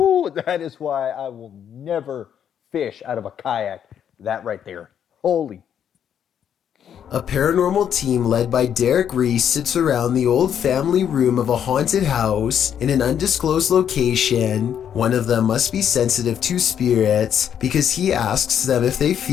That is why I will never fish out of a kayak. That right there. Holy. A paranormal team led by Derek Reese sits around the old family room of a haunted house in an undisclosed location. One of them must be sensitive to spirits because he asks them if they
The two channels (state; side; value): quieter; right; 8.9 dB